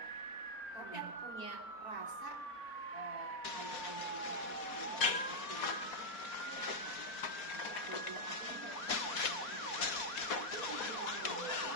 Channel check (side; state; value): right; late; 4.1 ms